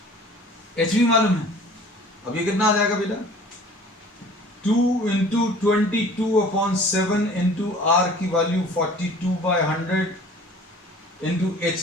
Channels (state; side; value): normal; both; correlation 0.47